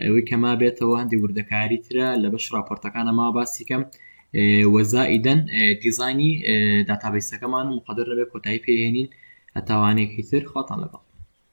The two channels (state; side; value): inverted; both; correlation -1.00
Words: ئەوەی کە ما بێتەوە هەندی وردەکاری ترە لە بەش راپۆرتەکانە ما باسیکەم وەزائیدەن دیزاینی داتابیسەکەمان و مقدر نەبێت کۆتایی پێهێنین هەتاوانێکی تر خۆتان لەگەڵ